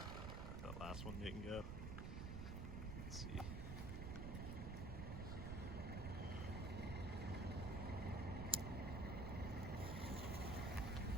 That last one didn't go. Let's see.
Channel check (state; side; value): noise; right; rumble, 2 dB below the sound